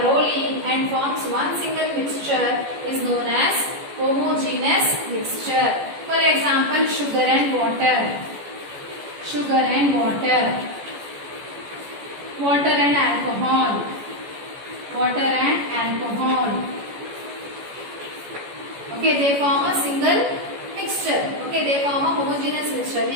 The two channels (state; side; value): late; left; 14 ms